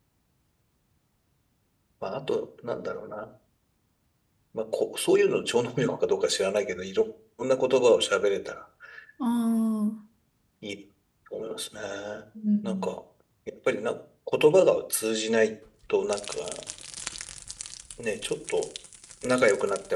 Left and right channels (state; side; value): identical; both; correlation 1.00